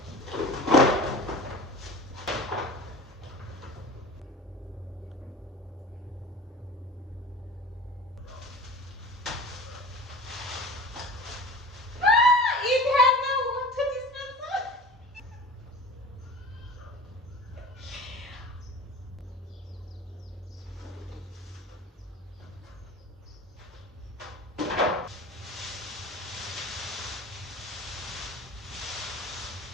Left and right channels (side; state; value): both; normal; correlation 0.38